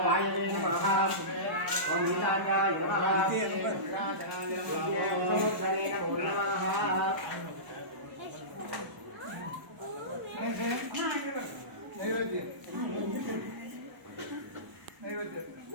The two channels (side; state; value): left; late; 1.0 ms